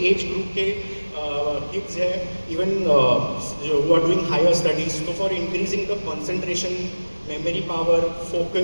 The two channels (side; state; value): both; inverted; correlation -1.00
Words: एज ग्रुप के किड्स है, इवन जो who are doing higher studies, तो for increasing the concentration, memory power,